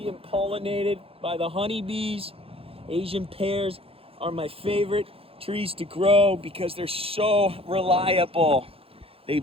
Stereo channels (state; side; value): late; left; 0.27 ms